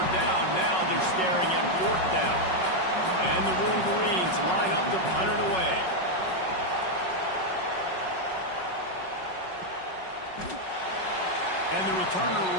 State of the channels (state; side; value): late; right; 5.4 ms